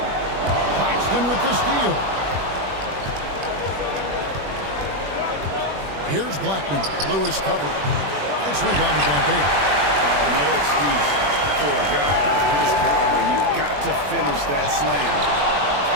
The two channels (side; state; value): left; late; 21 ms